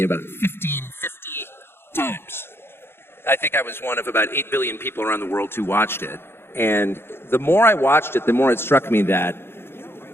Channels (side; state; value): right; late; 0.11 ms